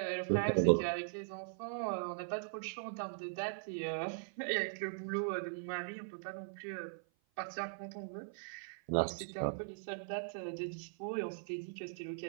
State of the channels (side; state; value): left; silent; 51 dB below the other